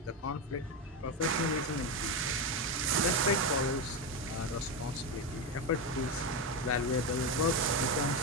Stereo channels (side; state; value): both; normal; correlation 0.12